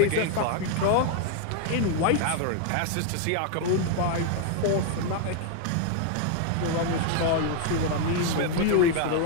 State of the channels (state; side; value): different; both; correlation 0.00